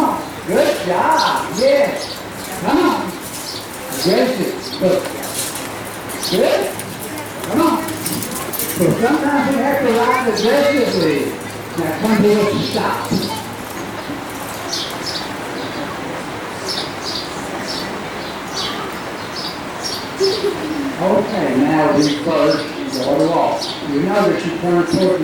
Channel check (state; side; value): identical; both; correlation 1.00